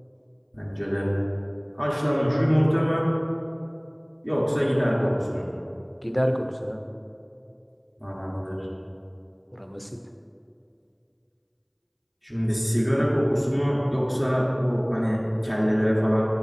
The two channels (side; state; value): both; identical; correlation 1.00